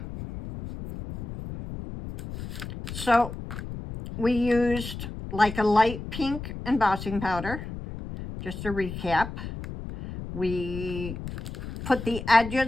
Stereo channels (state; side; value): noise; left; rumble, 9 dB below the sound